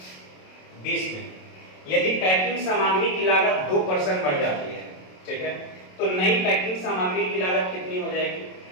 20 में, यदि पैकिंग सामग्री की लागत 2% बढ़ जाती है, ठीक है, तो नई पैकिंग सामग्री की लागत कितनी हो जाएगी?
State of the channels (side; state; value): right; late; 27 ms